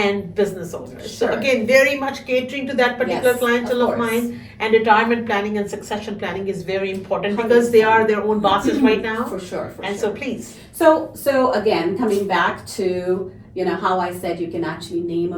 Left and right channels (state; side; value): identical; both; correlation 1.00